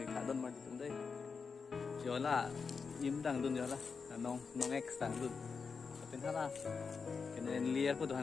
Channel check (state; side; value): quieter; right; 5.3 dB